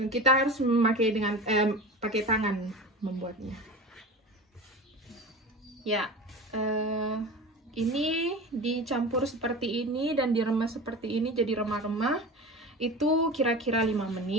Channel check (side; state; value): both; normal; correlation 0.32